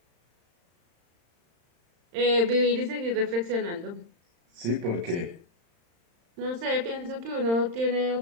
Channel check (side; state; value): left; late; 35 ms